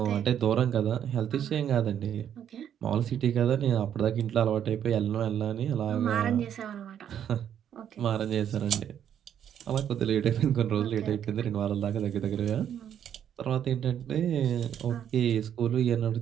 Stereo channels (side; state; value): left; quieter; 9.5 dB